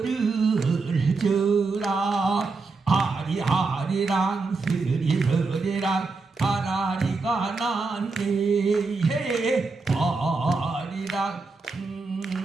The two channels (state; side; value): quieter; left; 4.0 dB